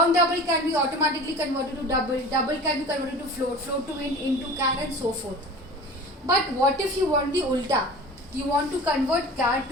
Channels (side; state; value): both; normal; correlation 0.38